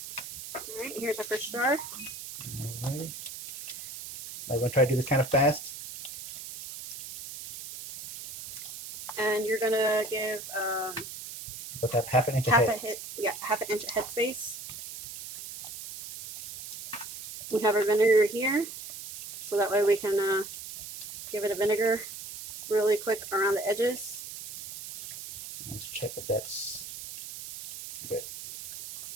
All right, here's our first jar. All right. I'm going to try to do this kind of fast. And you're going to give Let's have half an inch half ahead. an inch head space. We have our vinegar here, so that way we can give it a vinegar really quick around the edges. Let's check if that's good.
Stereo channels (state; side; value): noise; right; hiss, 10 dB below the sound